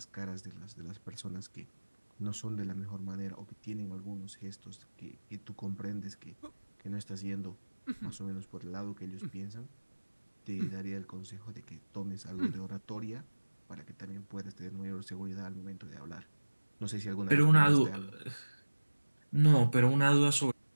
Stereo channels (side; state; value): both; inverted; correlation -1.00